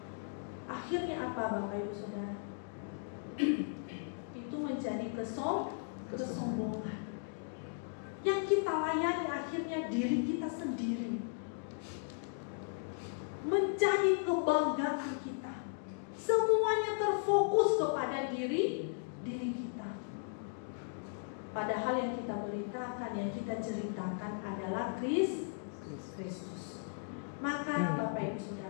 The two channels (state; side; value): silent; right; digital silence